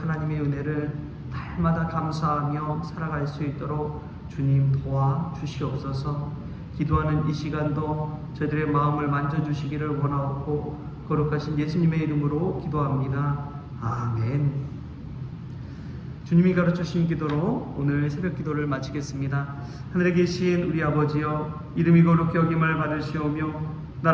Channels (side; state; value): both; identical; correlation 1.00